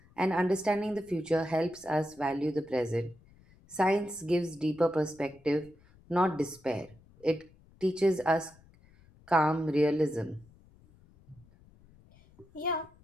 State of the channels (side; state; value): left; noise; rumble, 27 dB below the sound